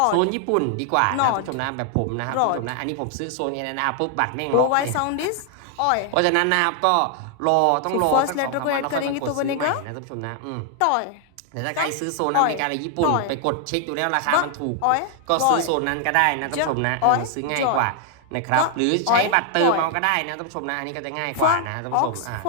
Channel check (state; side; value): different; both; correlation 0.00